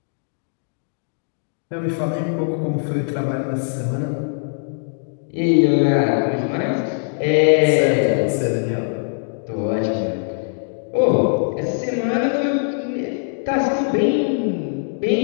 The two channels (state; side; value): silent; right; digital silence